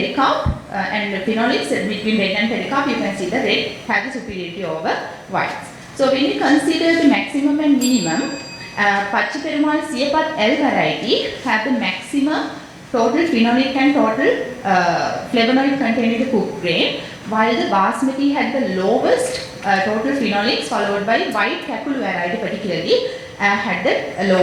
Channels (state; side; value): identical; both; correlation 1.00